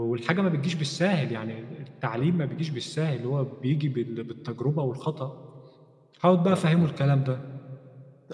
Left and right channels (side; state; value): both; identical; correlation 1.00